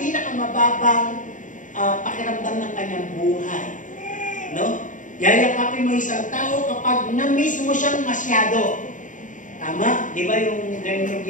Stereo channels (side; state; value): right; late; 0.37 ms